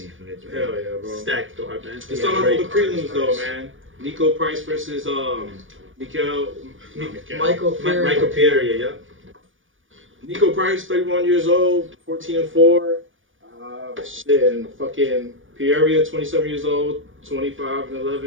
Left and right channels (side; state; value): left; late; 0.57 ms